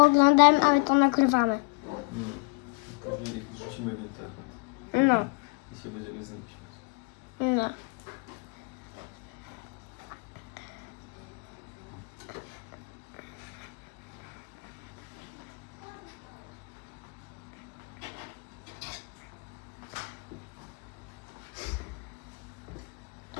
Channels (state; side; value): quieter; right; 34.0 dB